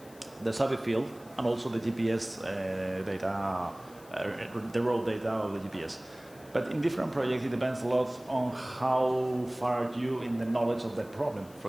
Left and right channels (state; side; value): noise; left; hiss, 24 dB below the sound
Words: survey field and also the GPS data, the raw data of the GPS. But in different projects, it depends a lot on how far are you in the knowledge of that problem. For